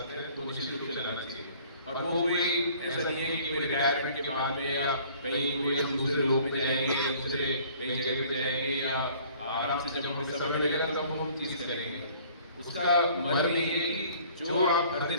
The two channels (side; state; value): both; inverted; correlation -0.54